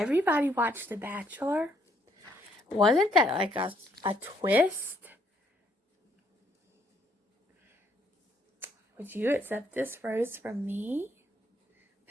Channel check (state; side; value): normal; both; correlation 0.69